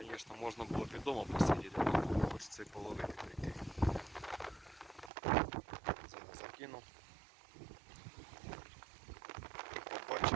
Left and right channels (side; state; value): left; drops out; at 5.1 s